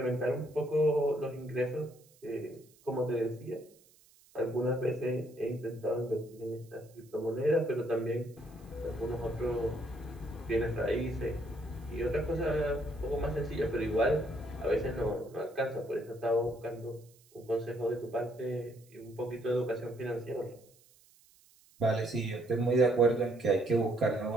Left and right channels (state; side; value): noise; right; hiss, 29 dB below the sound